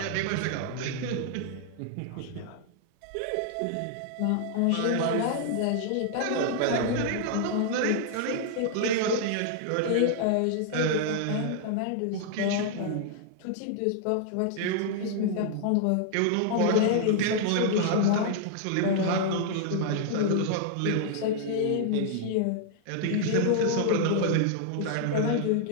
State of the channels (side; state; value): both; different; correlation -0.01